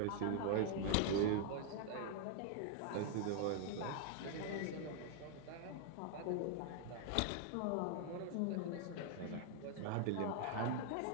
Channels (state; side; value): different; both; correlation 0.00